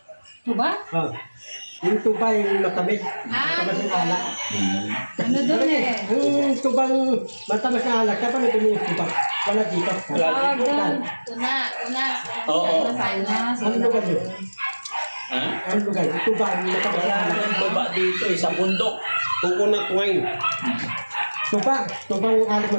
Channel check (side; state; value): both; inverted; correlation -1.00